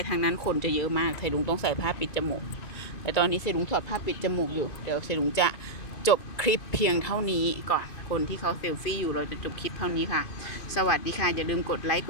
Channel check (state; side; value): late; right; 2.5 ms